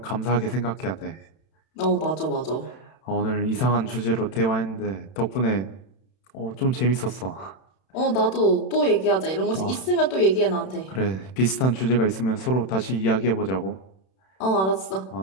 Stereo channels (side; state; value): right; late; 31 ms